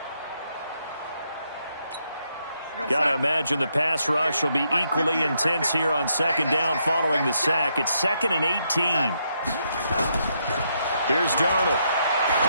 Got to imagine the pass rush will be equally intense here on second down following the sack. It's 2nd and 18. Here's Darnold.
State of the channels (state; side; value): inverted; both; correlation -0.77